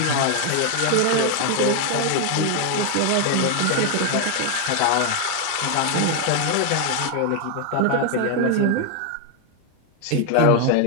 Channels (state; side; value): different; both; correlation 0.00